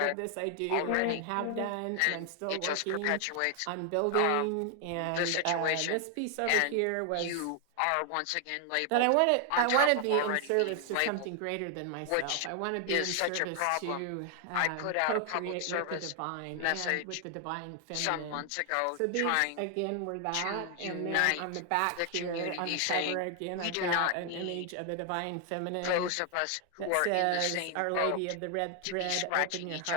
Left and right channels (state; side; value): different; both; correlation 0.00